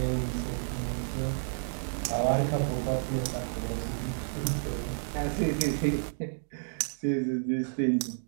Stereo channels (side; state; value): left; silent; digital silence